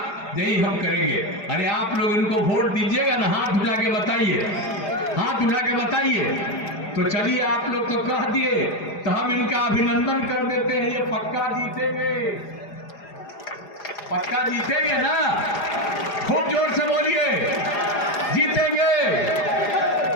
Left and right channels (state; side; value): late; right; 4.9 ms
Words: यही हम करेंगे। अरे आप लोग इनको वोट दीजिएगा ना, हाथ उठा के बताइए, हाथ उठा के बताइए। तो चलिए आप लोग तो कह दिए तो हम इनका अभिनंदन कर देते हैं। ये पक्का जीतेंगे, पक्का जीतेंगे ना? खूब जोर से बोलिए, जीतेंगे।